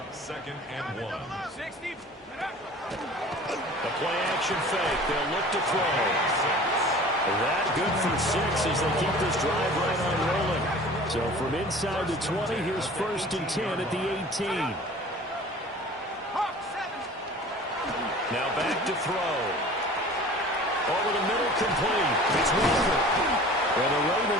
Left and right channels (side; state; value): both; normal; correlation 0.43